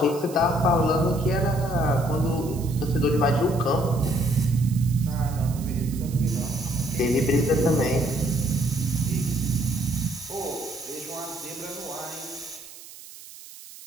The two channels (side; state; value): right; noise; hiss, 17 dB below the sound